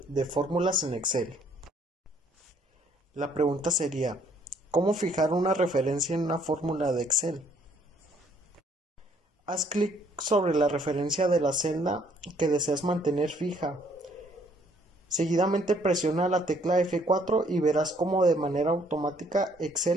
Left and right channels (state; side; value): normal; both; correlation 0.64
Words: de fórmulas en Excel. La pregunta sería, ¿cómo fijar una referencia en una fórmula de Excel? Haz clic sobre la referencia de la celda que deseas mantener fija. Seguidamente presiona la tecla F4 y verás cómo de manera automática